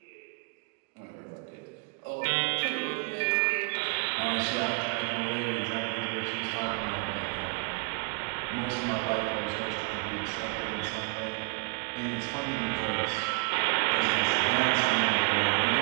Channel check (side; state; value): left; quieter; 32.9 dB